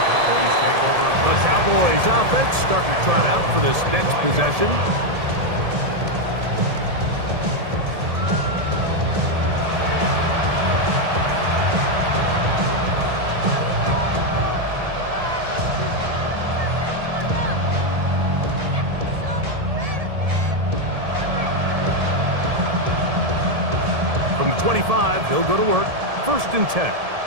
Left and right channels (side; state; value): left; late; 1.7 ms